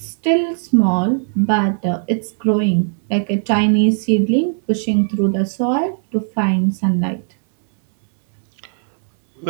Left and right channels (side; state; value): left; silent; 67 dB below the other